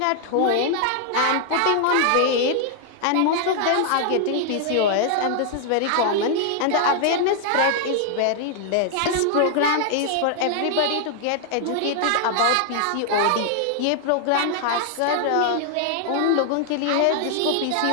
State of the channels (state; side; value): different; both; correlation 0.00